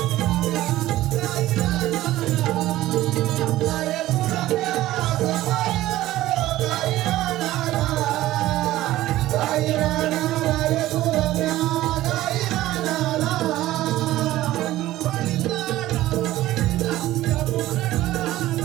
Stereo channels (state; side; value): quieter; left; 15.5 dB